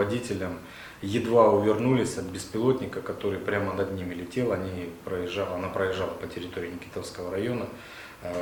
едва увернулись от беспилотника, который прямо над ними летел. Она проезжала по территории Никитовского района,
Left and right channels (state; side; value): identical; both; correlation 1.00